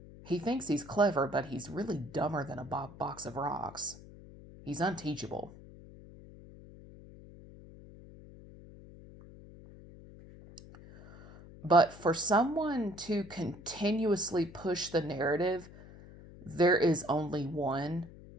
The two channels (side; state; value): left; noise; hum, 18 dB below the sound